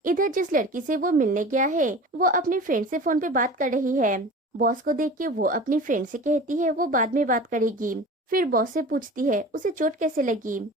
इधर जिस लड़की से वो मिलने गया है, वो अपनी फ्रेंड से फोन पे बात कर रही है। बॉस को देख के वो अपनी फ्रेंड से कहती है वो बाद में बात करेगी। फिर बॉस से पूछती है उसे चोट कैसे लगी।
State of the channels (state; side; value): normal; both; correlation 0.37